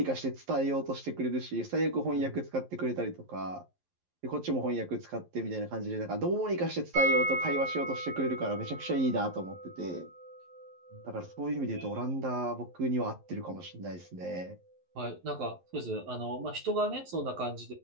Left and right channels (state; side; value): late; left; 11 ms